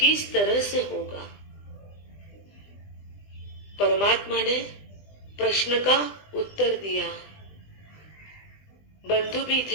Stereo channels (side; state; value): right; late; 20 ms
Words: तरह से होगा? परमात्मा ने प्रश्न का उत्तर दिया। बंधु भी